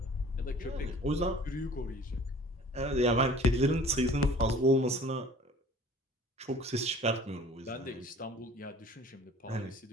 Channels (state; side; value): normal; both; correlation 0.48